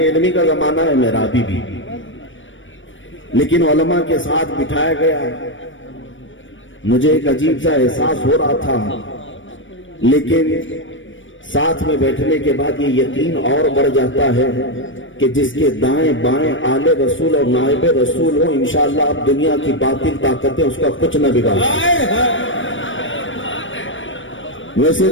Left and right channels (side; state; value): right; late; 0.56 ms